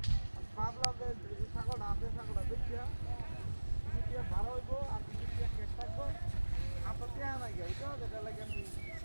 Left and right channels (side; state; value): both; inverted; correlation -1.00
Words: ভাবলাম যে ছাগলটা আছে ছাগলটা দেখিয়া ভালো হইব আর কেক থাকবো আপনার দেয়া নাই গে ওইটা যেটা লাগে আমি